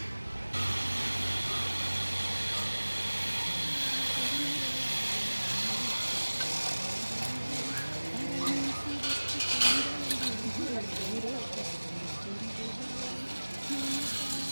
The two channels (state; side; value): inverted; both; correlation -1.00